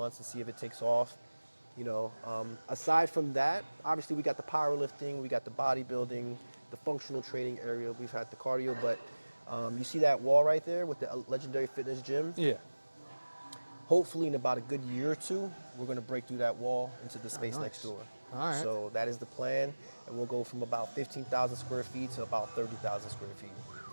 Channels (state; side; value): inverted; both; correlation -1.00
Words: to see if it takes off. Aside from that, obviously we got the powerlifting, we got the bodybuilding, the functional training area. We've had the cardio, but you see that wall right there with the Legendary Fitness Gym. Yeah. Hopefully, in about a good year or two, we're going to break through that wall into the space nice. next door. All right. So that is the plan, and we'll go from about 15,000 square feet to about 30,000 square feet.